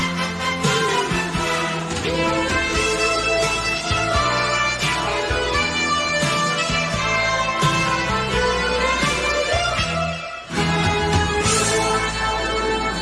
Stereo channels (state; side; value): identical; both; correlation 1.00